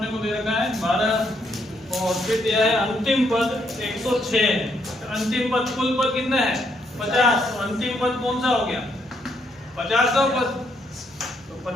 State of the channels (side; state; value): both; normal; correlation 0.74